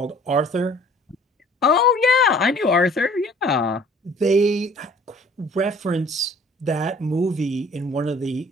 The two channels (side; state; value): both; normal; correlation 0.53